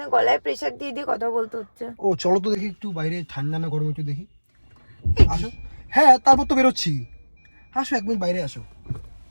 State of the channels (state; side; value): inverted; both; correlation -1.00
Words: গলায় প্রেসার দিয়ে দিয়ে কথা বলতে হচ্ছে। ও চলো তো দেখি একটু বাইরে ঠান্ডা না গরম একটু দেখি। আসো। হ্যাঁ, তারপর তো বেরোচ্ছি। আসো, 1 মিনিট বাইরে আসো,